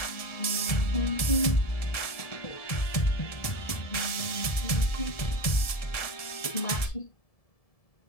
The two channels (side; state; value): right; late; 1.7 ms